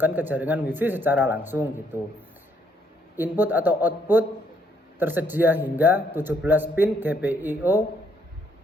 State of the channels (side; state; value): both; normal; correlation 0.70